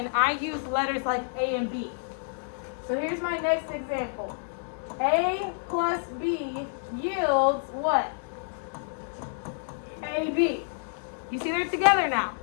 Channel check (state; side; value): silent; right; digital silence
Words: I use letters like A and B. So here's my next example. A plus B yields what? AB. You see they're together now.